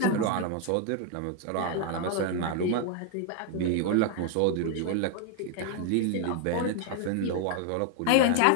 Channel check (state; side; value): different; both; correlation 0.00